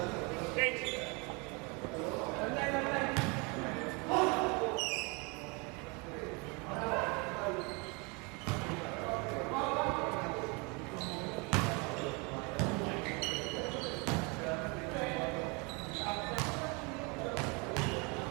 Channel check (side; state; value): left; quieter; 30.1 dB